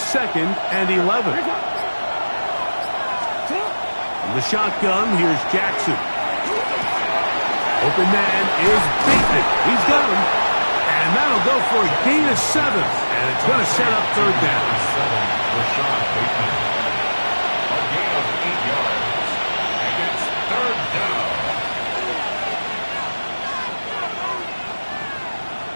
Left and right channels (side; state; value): both; inverted; correlation -1.00